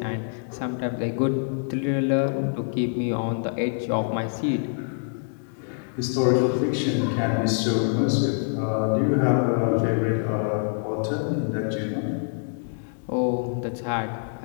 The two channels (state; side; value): silent; right; 61 dB below the other